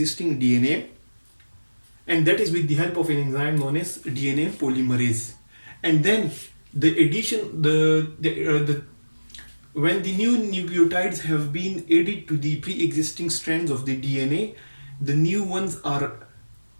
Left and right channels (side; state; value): both; inverted; correlation -1.00